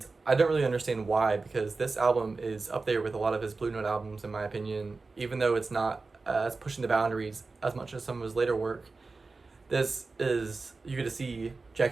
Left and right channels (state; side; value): quieter; left; 3.9 dB